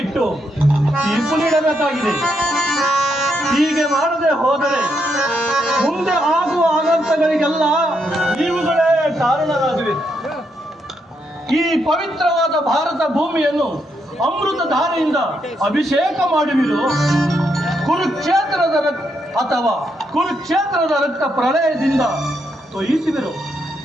ತೀರ್ಪು ನೀಡಬೇಕಾಗಿದೆ. ಹೀಗೆ ಮಾಡದೆ ಹೋದರೆ ಮುಂದೆ ಆಗುವ ಅನರ್ಥಗಳಿಗೆಲ್ಲ ಇವುಗಳೇ ಕಾರಣರಾಗಿವೆ. ಈ ಪವಿತ್ರವಾದ ಭಾರತ ಭೂಮಿಯನ್ನು ಅಮೃತ ಧಾರೆಯಿಂದ ಅಭಿಷೇಕ ಮಾಡುವಿರು, ಕುರುಕ್ಷೇತ್ರದ ಅಥವಾ ಕುರುಕ್ಷೇತ್ರದ ರಕ್ತ ಪ್ರಳಯದಿಂದ ತೊಯಿಸುವಿರು,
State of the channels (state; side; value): normal; both; correlation 0.79